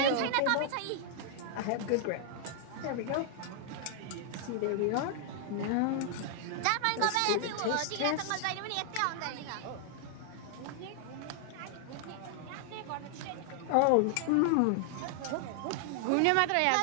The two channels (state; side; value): different; both; correlation 0.00